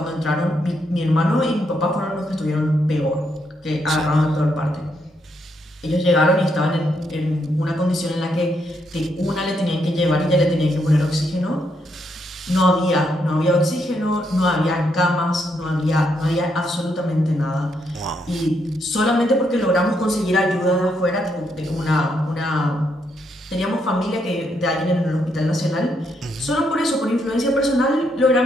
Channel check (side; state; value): both; normal; correlation 0.77